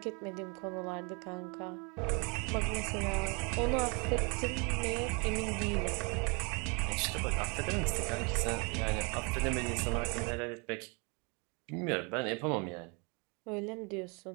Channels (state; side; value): quieter; left; 32.6 dB